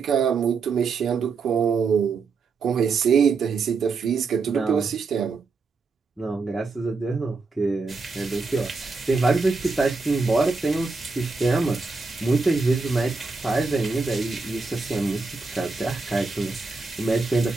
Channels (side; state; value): left; quieter; 4.3 dB